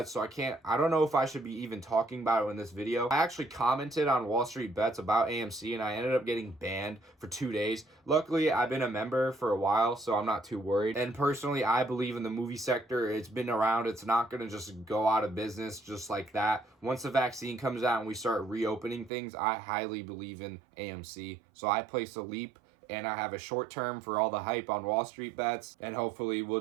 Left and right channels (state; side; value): drops out; left; at 19.1 s